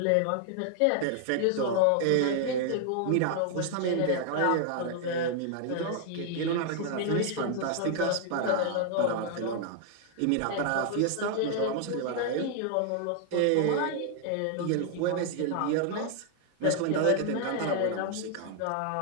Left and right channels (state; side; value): different; both; correlation 0.00